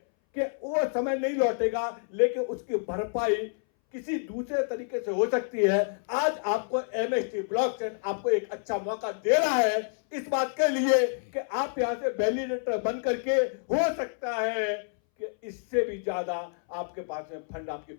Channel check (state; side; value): silent; right; 59 dB below the other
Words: कि वो समय नहीं लौटेगा, लेकिन उसकी भरपाई किसी दूसरे तरीके से हो सकती है। आज आपको एमएसटी ब्लॉकचेन आपको एक अच्छा मौका दे रहा है इस बात के लिए कि आप यहां से वैलिडेटर बन करके, हो सकता है कि इससे भी ज्यादा आपके पास में फंड आपकी